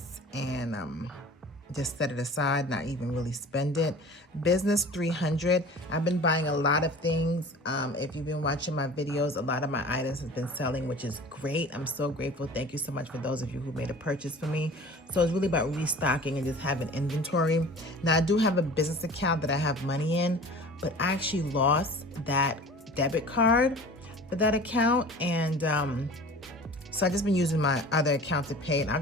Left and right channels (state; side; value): normal; both; correlation 0.41